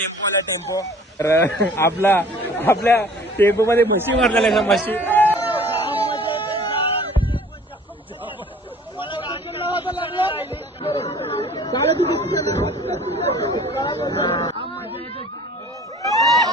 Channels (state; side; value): normal; both; correlation 0.49